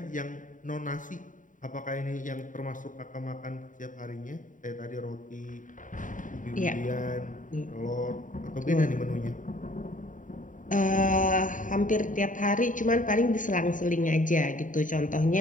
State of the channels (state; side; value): late; right; 0.38 ms